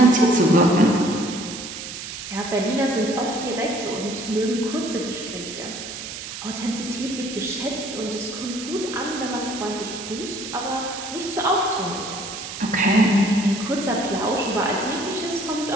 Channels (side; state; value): right; noise; hiss, 9 dB below the sound